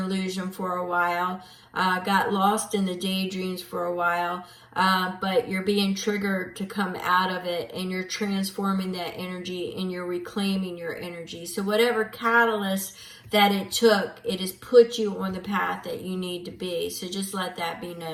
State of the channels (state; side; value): identical; both; correlation 1.00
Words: for a while, got lost in the daydreams for a while, but you're being triggered to come out of it, and you're transforming that energy and you're reclaiming your energy. So whatever catalyst that it took, it has put you on the path that you need to be. So just let that be